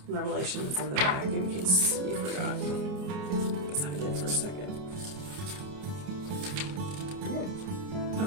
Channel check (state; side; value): late; left; 28 ms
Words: Revelation is in the back in case you forgot. Because I did for a second.